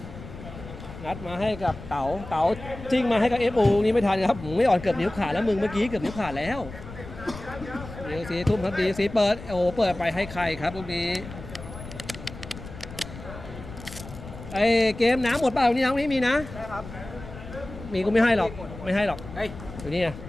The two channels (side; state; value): left; noise; rumble, 13 dB below the sound